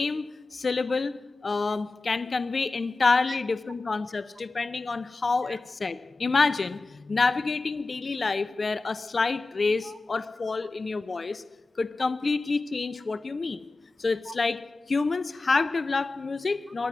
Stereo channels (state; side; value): quieter; right; 3.6 dB